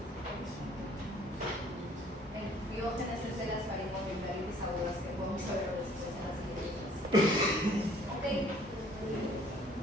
El Piógenes es de las faringoamigdalitis agudas que podemos saber de las siguientes. Ok.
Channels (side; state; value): both; normal; correlation 0.57